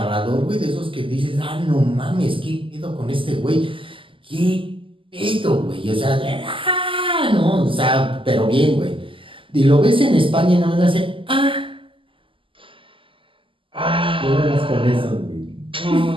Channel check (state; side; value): late; left; 0.25 ms